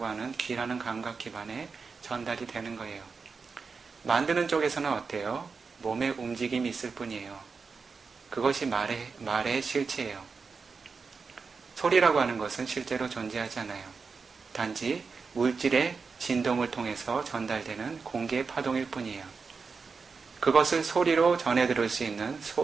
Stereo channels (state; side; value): quieter; left; 5.0 dB